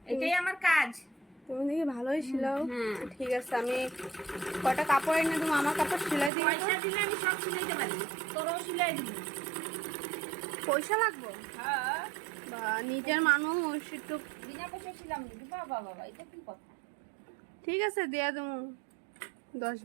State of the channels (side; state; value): left; drops out; at 6.3 s